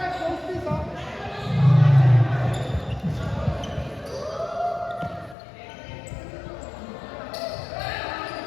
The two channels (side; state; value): right; drops out; at 5.4 s